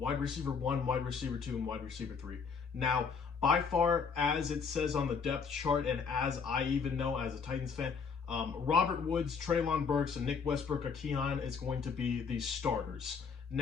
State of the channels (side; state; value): right; quieter; 5.7 dB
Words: receiver 1, wide receiver 2, and wide receiver 3. Now, by far, as it says on the depth chart, and as I even know as a Titans fan, Robert Woods, Treylon Burks, and Nick Westbrook-Ikhine is going to be the starters.